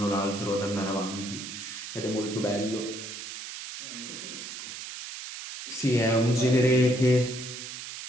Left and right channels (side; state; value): right; noise; hiss, 9 dB below the sound